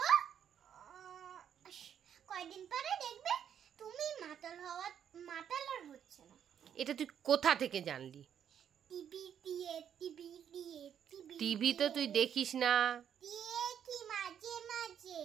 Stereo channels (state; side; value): quieter; left; 8.9 dB